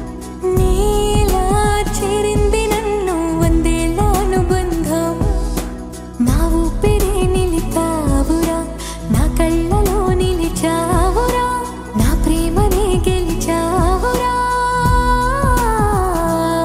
నీలా చేరింది నన్ను వందేళ్ళ అనుబంధం నా ఊపిరే నిలిపావురా నా కళ్ళలో నిలిచావురా నా ప్రేమనే గెలిచావురా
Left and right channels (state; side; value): identical; both; correlation 1.00